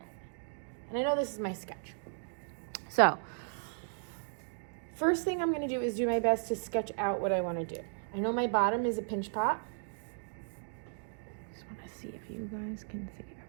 And I know this is my sketch. So, first thing I'm gonna do is do my best to sketch out what I wanna do. I know my bottom is a pinch pot. Just want to see if you guys can see.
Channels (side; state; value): left; silent; digital silence